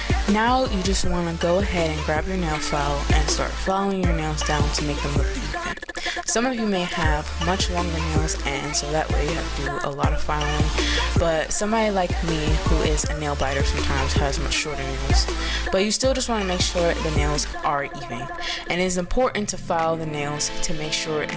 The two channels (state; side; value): identical; both; correlation 1.00